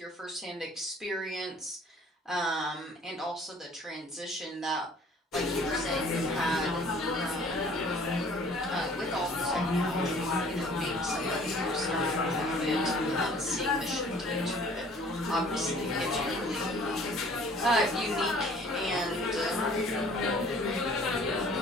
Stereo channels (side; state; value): both; normal; correlation 0.53